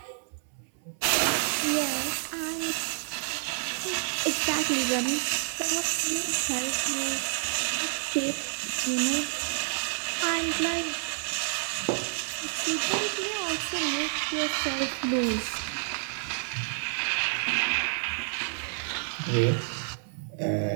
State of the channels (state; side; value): silent; left; 59 dB below the other